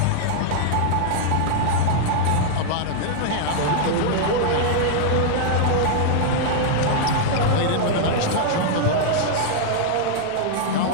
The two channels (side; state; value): both; different; correlation -0.01